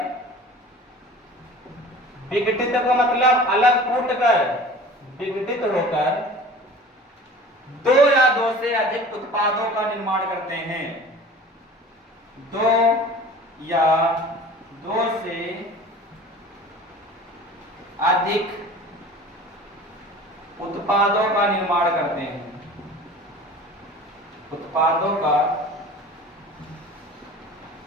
विघटित का मतलब अलग फूटकर, विघटित होकर दो या दो से अधिक उत्पादों का निर्माण करते हैं। दो या दो से अधिक उत्पादों का निर्माण करते हैं, उत्पादों का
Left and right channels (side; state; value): both; normal; correlation 0.41